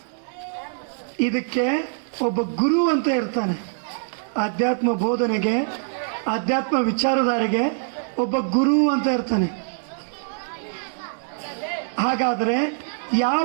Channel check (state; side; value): silent; left; digital silence